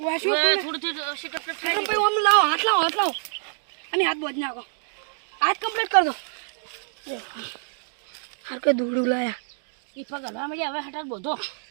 વાશો થોડું થોડું સીટ ભાઈ આમ લાવો, હાથ લાવો, હાથ લાવો અને હાથ બોધ નાખો. હાથ કમ્પ્લીટ કર દો. હાર કે દોડું લાયા. ઈ પગ હલવા મળ્યા હવે હાટે બધો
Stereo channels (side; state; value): left; silent; digital silence